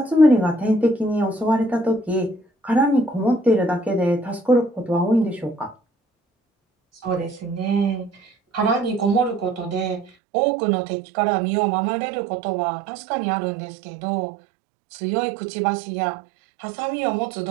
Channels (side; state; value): left; drops out; at 10.1 s